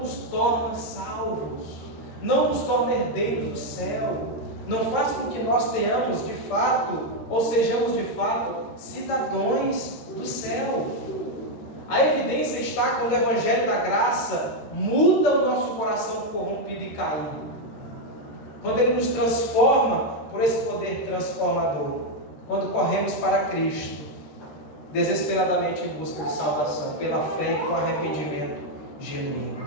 nos torna salvos, não nos torna herdeiros do céu, não faz com que nós tenhamos de fato, ou sejamos de fato, cidadãos do céu. A evidência está quando o Evangelho da Graça muda o nosso coração corrompido e caído, quando ele nos transforma por esse poder transformador, quando corremos para Cristo, desesperadamente em busca de salvação, pela fé e com arrependimento genuíno.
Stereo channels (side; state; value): right; late; 13 ms